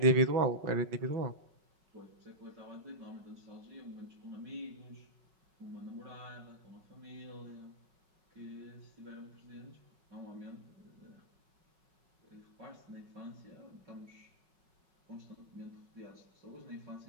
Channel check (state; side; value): late; left; 5.4 ms